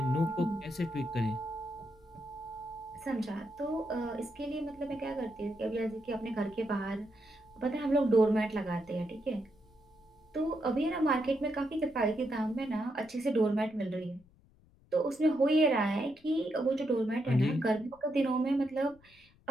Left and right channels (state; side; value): noise; left; rumble, 29 dB below the sound